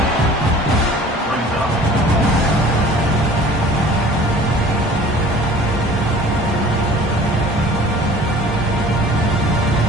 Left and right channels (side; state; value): both; normal; correlation 0.47